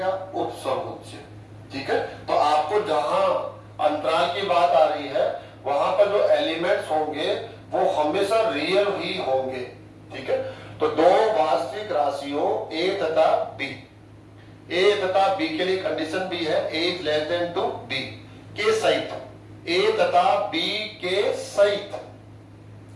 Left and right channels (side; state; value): both; identical; correlation 1.00